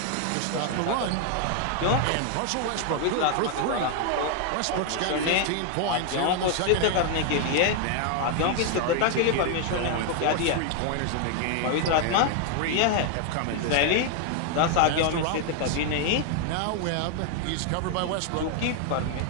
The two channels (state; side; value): different; both; correlation 0.00